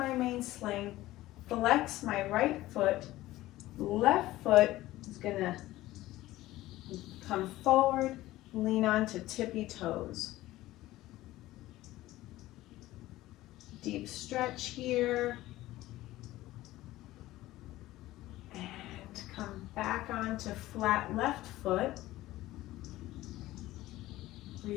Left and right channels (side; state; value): right; quieter; 16.5 dB